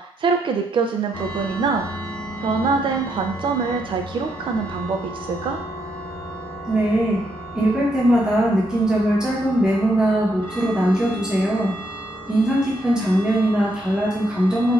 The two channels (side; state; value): both; normal; correlation 0.77